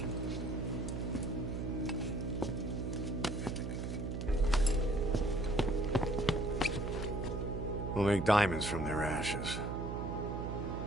We'll make diamonds from their ashes.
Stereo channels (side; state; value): right; noise; hum, 3 dB below the sound